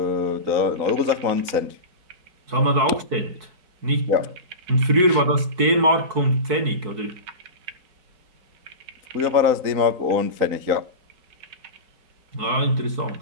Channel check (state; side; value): late; left; 4.6 ms